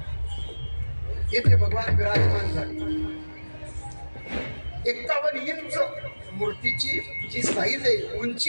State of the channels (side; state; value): both; inverted; correlation -1.00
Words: येथे भगवान विराजमान झाले. 51 इंच मूर्तीची जी साईज आहे,